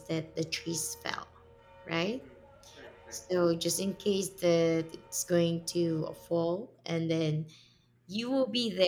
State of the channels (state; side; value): identical; both; correlation 1.00